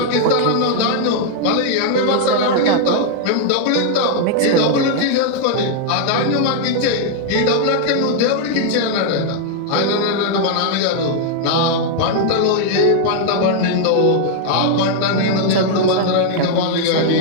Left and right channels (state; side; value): different; both; correlation 0.00